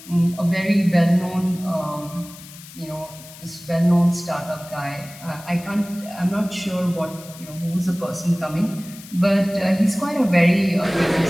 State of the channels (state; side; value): noise; left; hiss, 18 dB below the sound